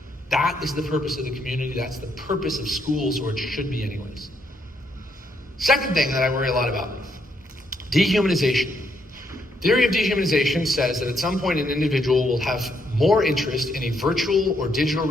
That is the purpose of the community. That's the purpose of schools, or it should be anyways. Second thing that I worry a lot about, dehumanization. Theory of dehumanization says that at some point an individual will have more interest in a virtual or digital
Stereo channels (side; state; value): both; normal; correlation 0.75